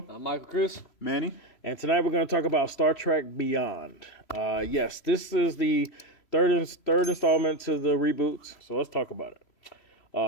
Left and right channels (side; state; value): right; late; 3.0 ms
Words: I'm Michael Cruz. Manny. And tonight we're going to talk about Star Trek Beyond. Yes, this is the third installment to the reboots, so let's talk about